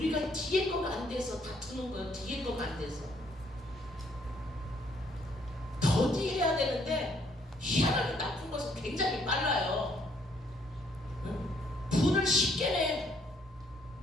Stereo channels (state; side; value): normal; both; correlation 0.67